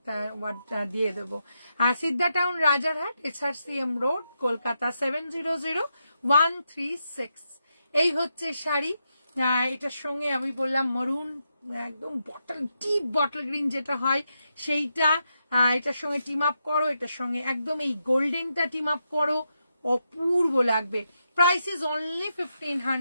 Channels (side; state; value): both; inverted; correlation -0.84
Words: ওয়ার্ডটা দিয়ে দেবো। আর Siddha town Rajarhat, SRCM road, Kolkata 700136। এই হচ্ছে শাড়ি। এটার সঙ্গে আমি বললাম মরুন, একদম ডিপ বটল গ্রিন যেটা হয় সেইটা। এটার সঙ্গে টিম আপ করো, এটার সঙ্গে একদম এই গোল্ডেনটা টিম আপ করো, অপূর্ব লাগবে। Price is only